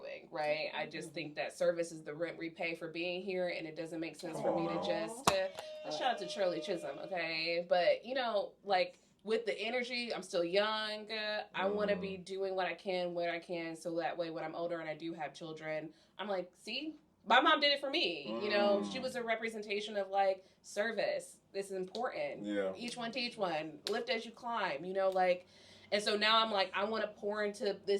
right? I just think that service is the rent we pay for being here, and it doesn't make sense for me to just, shout out to Shirley Chisholm, okay? But, you know, like, with the energy, I'm still young. I want to be doing what I can, where I can, so that way when I'm older and I do have children, I'm like, see? My mom did it for me. You know, she was a representation of like service. This is important. Each one teach one. Lift as you climb. You know, like, and so now I'm like, I want to pour into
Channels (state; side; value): identical; both; correlation 1.00